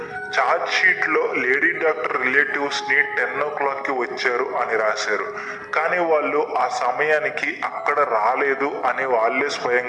ఛార్జ్ షీట్ లో లేడీ డాక్టర్ రిలేటివ్స్ ని 10 o'clock వచ్చారు అని రాశారు. కానీ వాళ్ళు ఆ సమయానికి అక్కడ రాలేదు అని వాళ్ళే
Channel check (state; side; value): identical; both; correlation 1.00